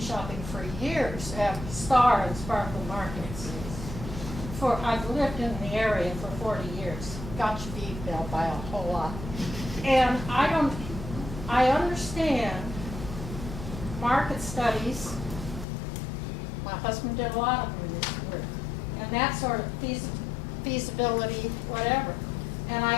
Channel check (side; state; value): right; drops out; at 15.7 s